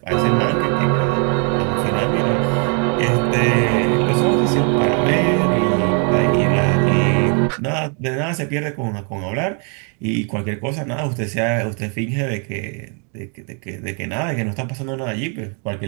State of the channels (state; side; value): quieter; left; 39.1 dB